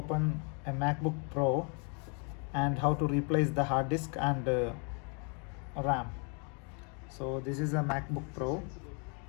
a MacBook Pro and how to replace the hard disk and RAM. So this is a MacBook Pro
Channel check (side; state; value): right; quieter; 37.0 dB